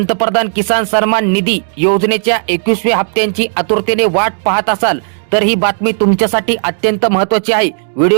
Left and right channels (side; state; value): left; silent; 72 dB below the other